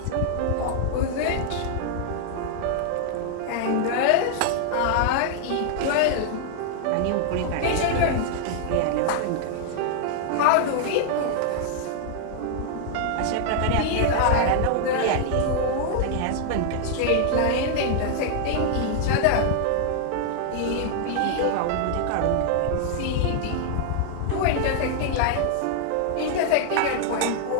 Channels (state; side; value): different; both; correlation 0.00